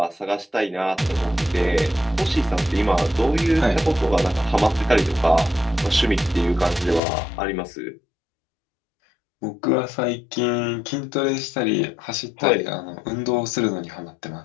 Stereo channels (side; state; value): right; drops out; at 7.0 s